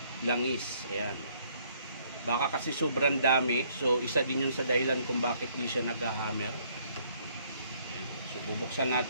langis. Ayan. Baka kasi sobrang dami. So isa din yun sa dahilan kung bakit di siya nag-hammer. So bubuksan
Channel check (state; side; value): inverted; both; correlation -0.65